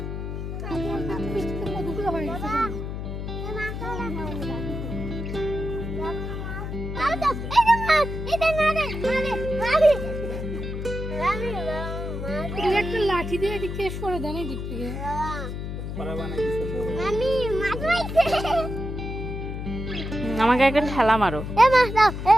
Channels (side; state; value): left; noise; hum, 5 dB below the sound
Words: একটা লাঠি দিয়ে এদিক থেকে সরে দেন এদিক থেকে আমাকে একটা ঠেলা মারো।